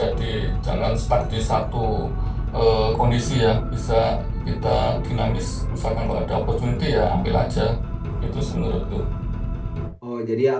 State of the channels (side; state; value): both; identical; correlation 1.00